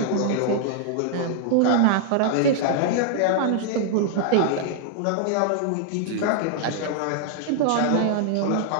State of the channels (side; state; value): both; different; correlation -0.01